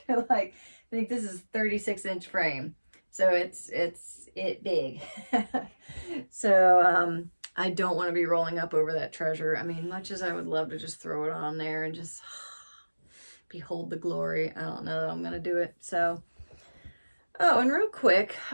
Like, I think this is 36-inch frame. So it's big. So I don't want to be rolling up over that treasure. I mean, much as I would love to just throw it on there and just behold the glory, I don't know that I'm going to do it. So, oh, and real quick,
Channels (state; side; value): inverted; both; correlation -1.00